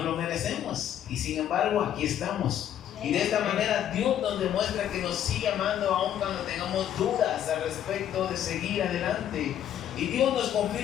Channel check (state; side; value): quieter; right; 10.5 dB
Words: merecemos. Y sin embargo, aquí estamos. Y de esta manera Dios nos demuestra que nos sigue amando aun cuando tengamos dudas al respecto de seguir adelante. Y Dios nos